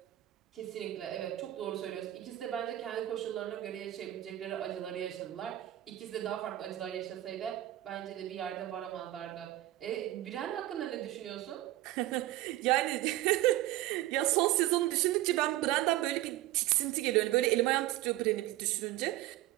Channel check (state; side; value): quieter; left; 15.5 dB